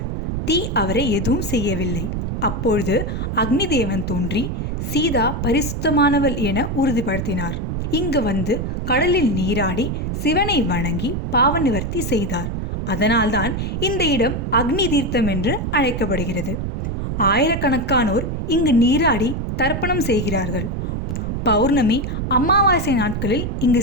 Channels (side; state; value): right; noise; rumble, 2 dB below the sound